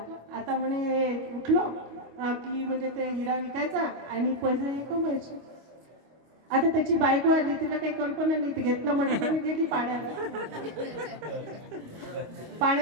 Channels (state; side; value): late; left; 25 ms